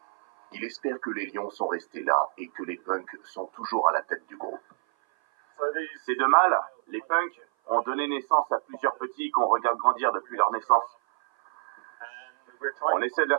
Il espère que les lions sont restés là et que les punks sont toujours à la tête du groupe. Ces 2 mâles, les punks, ont donné naissance à plusieurs petits qu'on regarde grandir depuis leur naissance. On essaie de les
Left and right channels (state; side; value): silent; left; 56 dB below the other